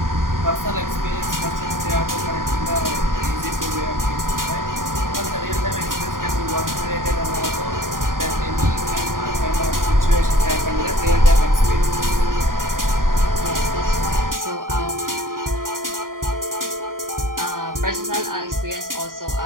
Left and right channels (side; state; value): left; late; 0.91 ms